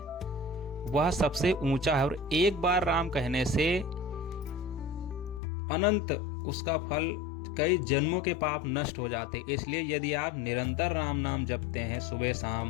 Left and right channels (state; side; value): drops out; right; at 5.4 s